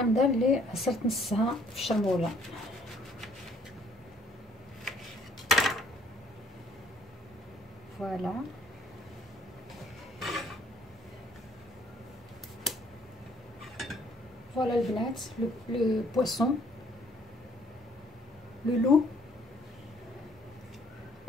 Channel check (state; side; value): normal; both; correlation 0.62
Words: اللي عصرت نصها في الشرموله. فوالا فوالا البنات، لو بويسون لو لو